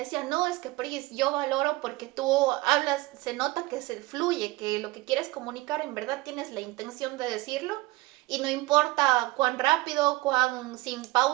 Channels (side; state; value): left; quieter; 20.5 dB